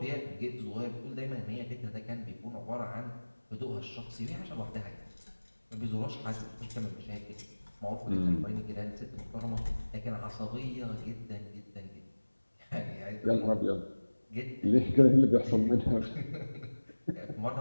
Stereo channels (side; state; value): both; inverted; correlation -1.00